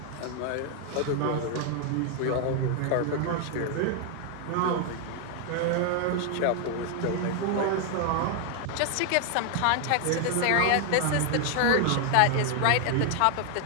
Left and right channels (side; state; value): both; different; correlation 0.00